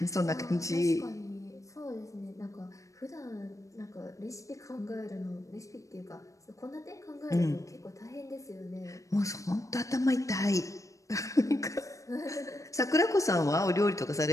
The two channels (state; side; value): late; right; 0.16 ms